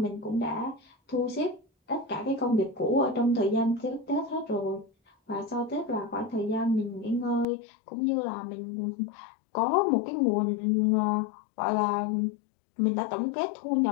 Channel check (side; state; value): right; drops out; at 7.5 s